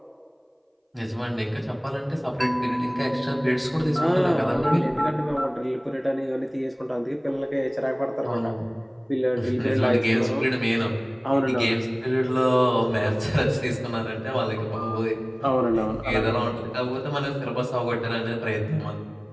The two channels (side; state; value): both; identical; correlation 1.00